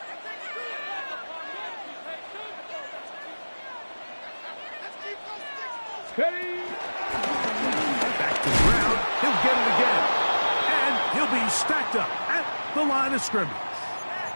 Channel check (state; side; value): inverted; both; correlation -1.00